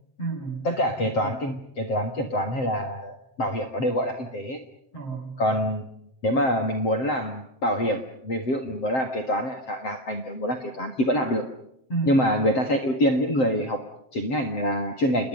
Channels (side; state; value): right; late; 7.7 ms